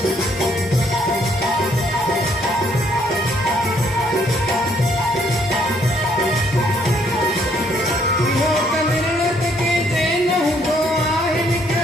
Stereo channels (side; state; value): both; normal; correlation 0.68